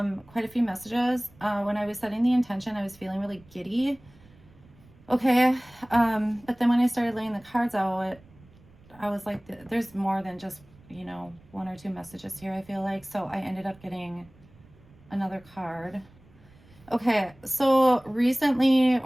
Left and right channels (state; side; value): noise; right; rumble, 26 dB below the sound